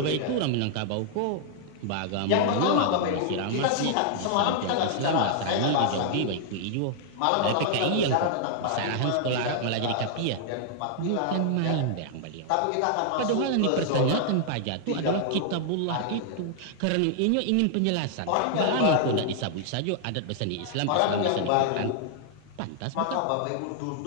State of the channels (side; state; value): both; different; correlation -0.01